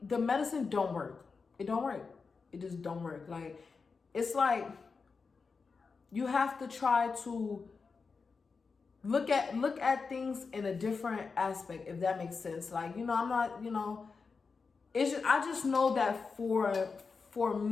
the medicine don't work. It don't work. It just don't work. Like, it's like you have to try to look at things in a different aspect, if that makes sense. Like, I'm not, it's just, I just know that for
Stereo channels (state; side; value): quieter; right; 4.8 dB